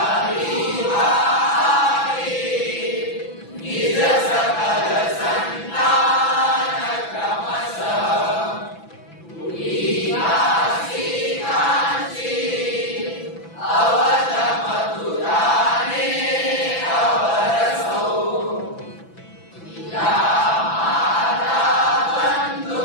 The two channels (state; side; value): late; right; 6.0 ms